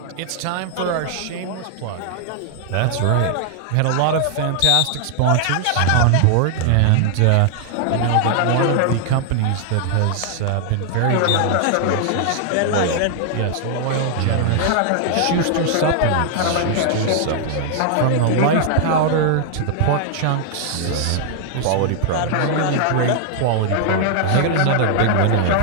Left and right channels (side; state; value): both; different; correlation 0.00